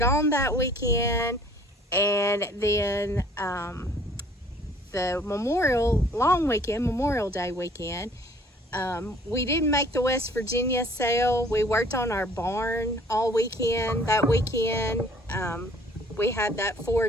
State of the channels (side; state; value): both; normal; correlation 0.55